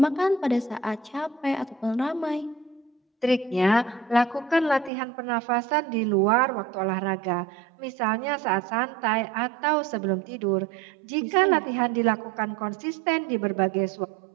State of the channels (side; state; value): left; drops out; at 4.9 s